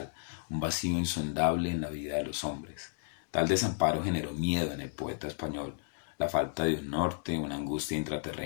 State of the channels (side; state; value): right; silent; digital silence